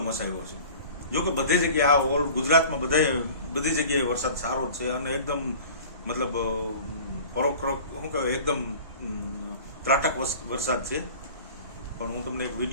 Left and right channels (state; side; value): inverted; both; correlation -0.42